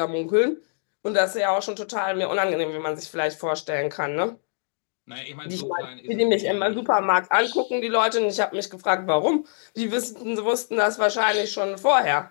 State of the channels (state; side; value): silent; right; digital silence